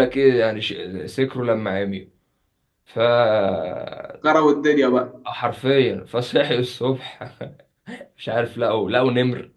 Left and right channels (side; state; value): both; identical; correlation 1.00